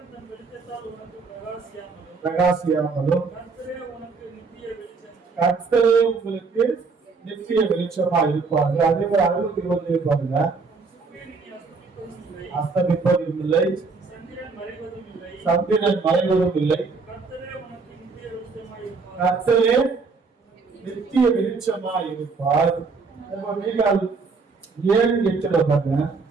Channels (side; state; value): left; quieter; 4.5 dB